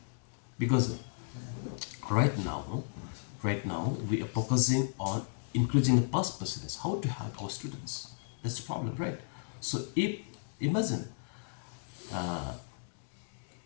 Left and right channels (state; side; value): silent; right; digital silence